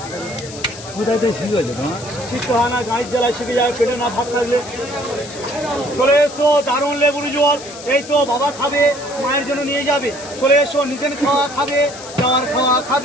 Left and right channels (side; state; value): left; noise; hiss, 14 dB below the sound